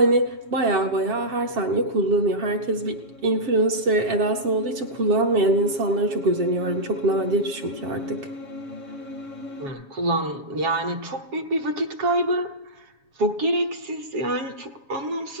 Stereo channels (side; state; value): left; late; 7.3 ms